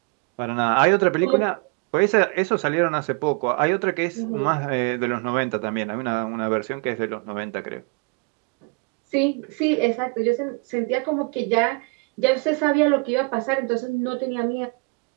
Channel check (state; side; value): quieter; left; 32.4 dB